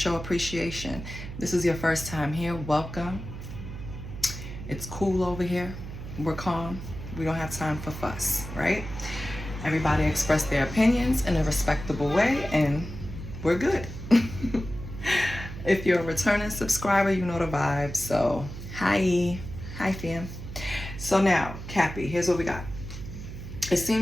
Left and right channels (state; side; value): noise; right; hum, 10 dB below the sound